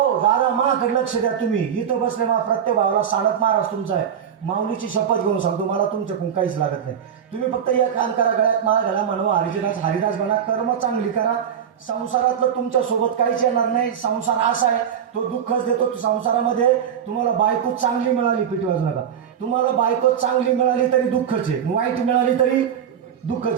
दादा माकडे लक्ष द्या. तुम्ही इथं बसले मा प्रत्येक भावाला साडत महाराज तुमचा आहे. माऊलीची शपथ घेऊन सांगतो, मला तुमच्याकडून काहीच लागत नाही. तुम्ही फक्त एक काम करा, गळ्यात माळ घाला, म्हणवा हरिदास हरिदास बना, कर्म चांगली करा. संसारातलं तुमच्या सोबत काहीच येणार नाही. संसार असा आहे, तो दुःखच देतो. संसारामध्ये तुम्हाला बायको चांगली मिळाली, पिटवाज नका. तुम्हाला बायको चांगली मिळाली तरी दुःखच आहे, वाईट मिळाली तरी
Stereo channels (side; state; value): left; quieter; 8.5 dB